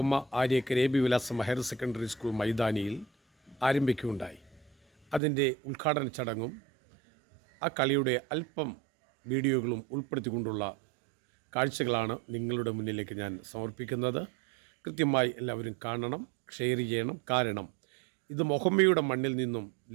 ആര്യക്കര AB വിലാസം ഹയർ സെക്കൻഡറി സ്കൂൾ മൈതാനിയിൽ ആരംഭിക്കുകയുണ്ടായി. അതിൻ്റെ ഉദ്ഘാടന ചടങ്ങും ആ കളിയുടെ അല്പം വീഡിയോകളും ഉൾപ്പെടുത്തിക്കൊണ്ടുള്ള കാഴ്ചകളാണ് നിങ്ങളുടെ മുന്നിലേക്ക് ഞാൻ സമർപ്പിക്കുന്നത്. കൃത്യമായി എല്ലാവരും കാണണം, ഷെയർ ചെയ്യണം. കാരണം ഇത് മുഹമ്മയുടെ മണ്ണിൽ നിന്നും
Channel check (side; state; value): left; drops out; at 5.2 s